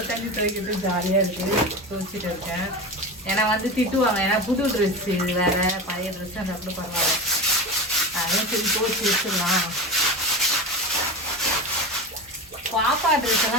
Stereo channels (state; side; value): normal; both; correlation 0.22